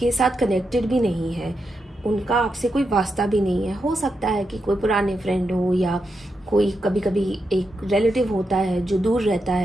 साथ कनेक्टेड भी नहीं है, उनका आपसे कोई वास्ता भी नहीं है। हो सकता है कि कोई पुराने फ्रेंड हो या कोई कभी कभी एक रिलेटिव होता है जो दूर रहता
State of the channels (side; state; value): both; normal; correlation 0.85